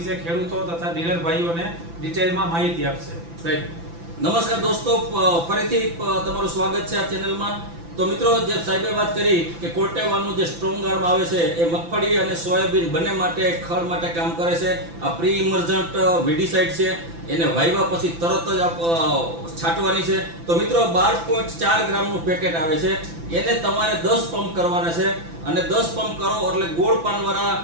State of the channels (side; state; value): left; late; 5.9 ms